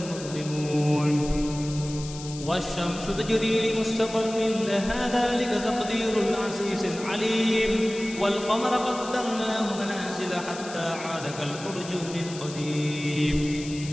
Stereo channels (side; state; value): left; noise; hiss, 13 dB below the sound